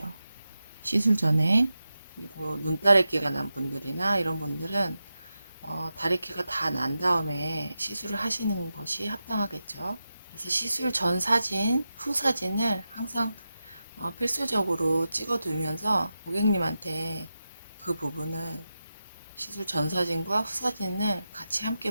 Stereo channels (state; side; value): inverted; both; correlation -0.91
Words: 시술 전에. 그리고 눈다래끼가 난 분들이나 이런 분들은 다래끼가 다 난 다음에 시술을 하시는 것이 합당하겠죠. 그래서 시술 전 사진, 후 사진을 항상 필수적으로 찍어두면서 고객님한테 그 부분을, 시술 전 사진과 후 사진을 같이